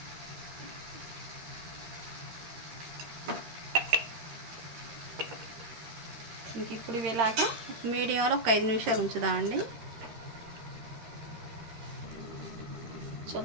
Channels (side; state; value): left; late; 13 ms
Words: ఇంక ఇప్పుడు ఇలాగా మీడియంలో ఒక 5 నిమిషాలు ఉంచుదామండి.